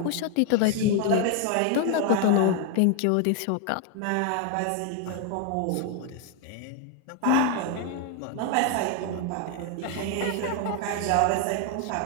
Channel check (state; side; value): different; both; correlation 0.01